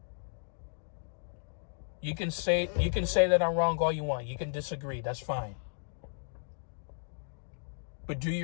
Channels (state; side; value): silent; right; digital silence